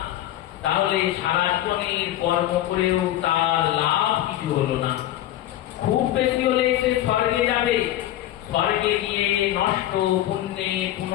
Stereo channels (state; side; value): quieter; right; 13.5 dB